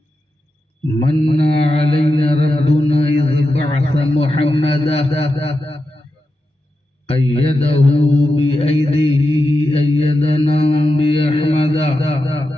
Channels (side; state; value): both; normal; correlation 0.89